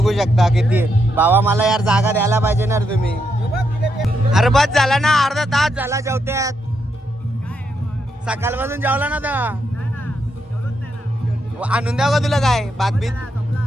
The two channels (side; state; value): both; normal; correlation 0.80